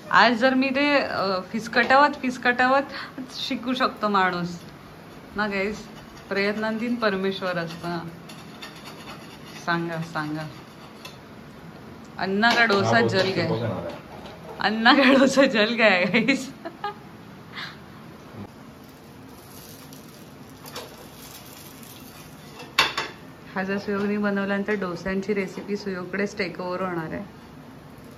आज जर मी ते फिसकटावत शिकू शकतो माणूस ना गाईस. प्रयत्नांतीन परमेश्वर असतं. सांगा सांगा. अन्ना का डोसा जल गया. अन्ना का डोसा जल गया गाईस. हा जर सुयोगने बनवल्यानंतर डोस्यांची रेसिपी सुयोगकडेच टेक ओव्हर होणार आहे.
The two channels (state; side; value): identical; both; correlation 1.00